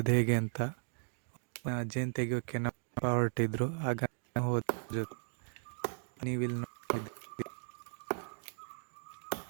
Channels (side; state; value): left; silent; digital silence